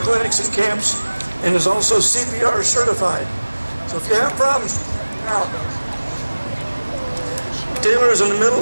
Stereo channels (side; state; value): both; inverted; correlation -1.00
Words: and camps and is also CPR certified. So if you have problems, out. Taylor is in the